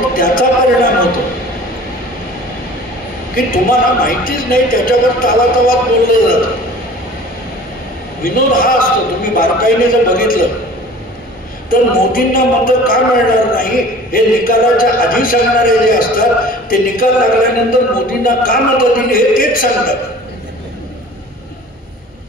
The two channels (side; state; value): both; normal; correlation 0.45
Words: त्याचा परिणाम होतो की तुम्हाला माहितीच नाही, त्याच्यावर तावातावात बोललं जातं. विनोद हा असतो. तुम्ही बारकाईने जर बघितलं तर मोदींना मतं का मिळणार नाही हे निकालाच्या आधी सांगणारे जे असतात, ते निकाल लागल्यानंतर मोदींना का मतं दिली हे तेच सांगतात.